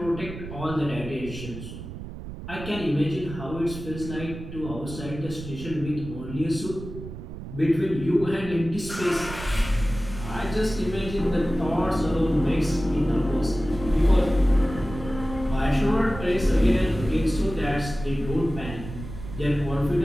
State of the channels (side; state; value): right; noise; rumble, 11 dB below the sound